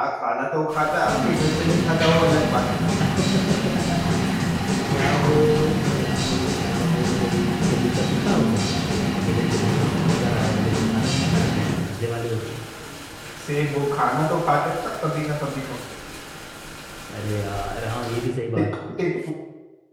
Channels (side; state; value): both; identical; correlation 1.00